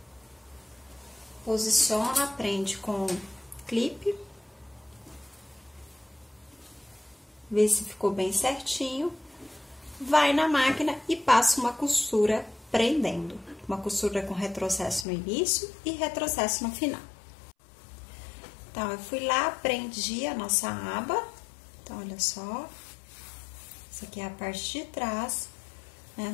Posiciona, prende com clipe. Vê se ficou bem certinho. Vai na máquina e passa uma costura prendendo. Uma costura com retrocesso no início e retrocesso no final. Então, eu fui lá, prendi a nossa aba. Então, olha só. Essa aqui é a parte de trás, né,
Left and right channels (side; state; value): right; drops out; at 15.1 s